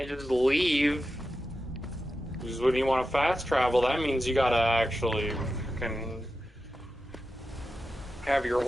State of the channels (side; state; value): both; normal; correlation 0.91